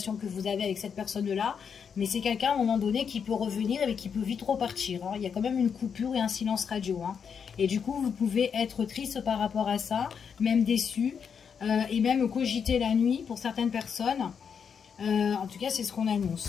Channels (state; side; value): quieter; right; 6.8 dB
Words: que vous avez avec cette personne-là, mais c'est quelqu'un à un moment donné qui peut revenir et qui peut vite repartir. Hein. Il y a quand même une coupure et un silence radio. Hein. Et du coup, vous pouvez être triste par rapport à ça, même déçu. et même cogiter la nuit pour certaines personnes. En tout cas, c'est ce qu'on